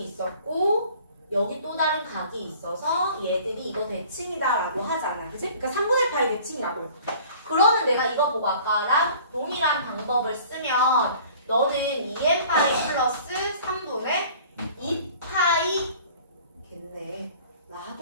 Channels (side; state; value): both; inverted; correlation -0.49